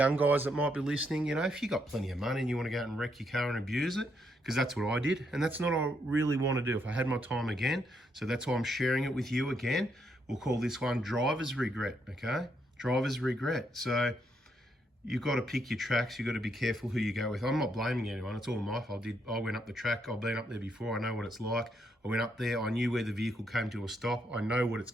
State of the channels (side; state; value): both; normal; correlation 0.76